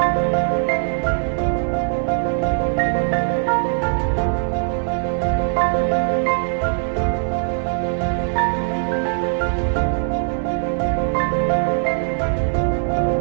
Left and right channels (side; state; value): left; silent; digital silence